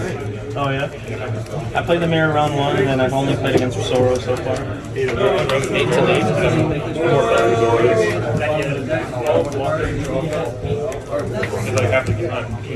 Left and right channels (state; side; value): identical; both; correlation 1.00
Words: Oh yeah. I played the mirror round 1, and then I've only played against Zoro so far. 8 to 8. Because I have to get on